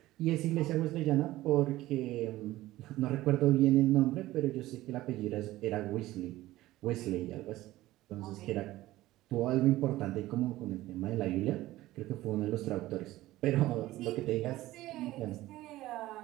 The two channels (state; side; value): quieter; left; 16.5 dB